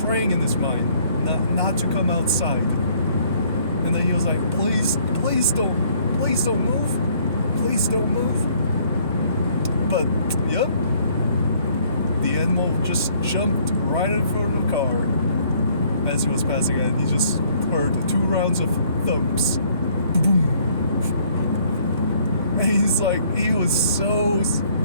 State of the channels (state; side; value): inverted; both; correlation -0.62